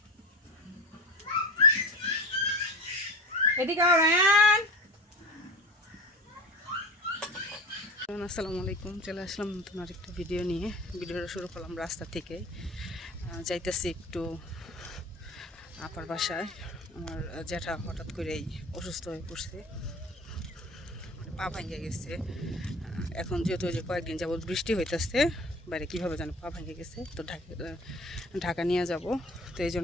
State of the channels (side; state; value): both; normal; correlation 0.34